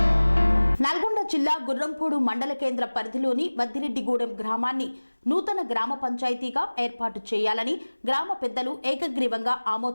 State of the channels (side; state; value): both; inverted; correlation -1.00